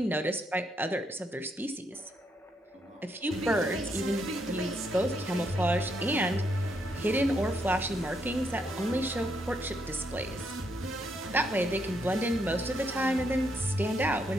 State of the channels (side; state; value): both; normal; correlation 0.77